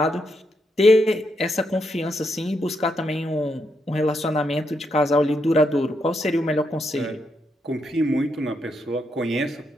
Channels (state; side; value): normal; both; correlation 0.80